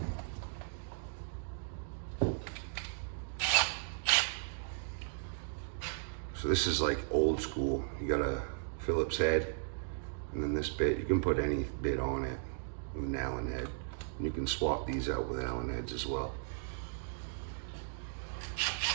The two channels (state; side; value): silent; left; digital silence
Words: So this is like old school. You got a Phillips head, and then this bit, you can put any bit on it with an Allen head. And you can swap these out with Allen heads as well.